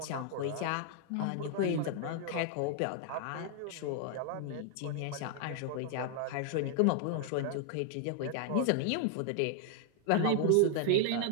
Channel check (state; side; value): different; both; correlation 0.00